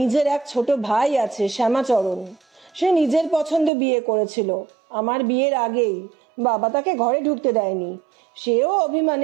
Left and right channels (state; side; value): drops out; left; at 3.7 s